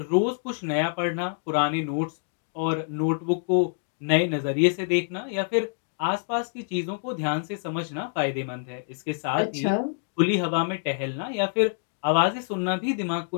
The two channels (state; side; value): silent; right; digital silence